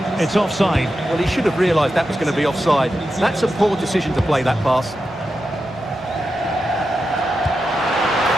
It's offside. Well, he should have realised that was going to be offside. That's a poor decision to play that pass.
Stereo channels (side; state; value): both; normal; correlation 0.89